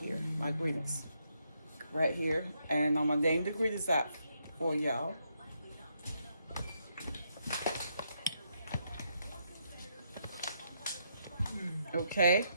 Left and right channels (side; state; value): both; inverted; correlation -0.78